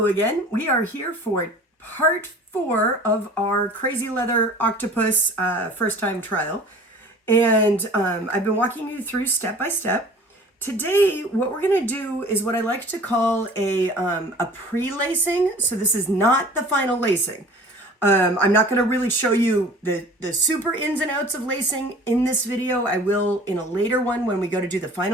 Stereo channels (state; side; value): normal; both; correlation 0.46